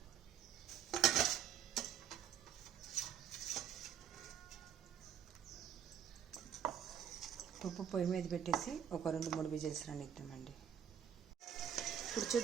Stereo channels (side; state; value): left; quieter; 8.9 dB